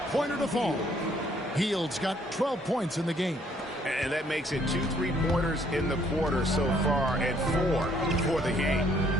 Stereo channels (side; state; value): both; normal; correlation 0.65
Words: to fall. Heald's got 12 points in the game. And that makes it 2 3-pointers in the quarter so far and 4 for the game.